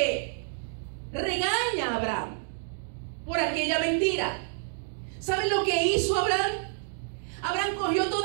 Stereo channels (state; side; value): silent; left; digital silence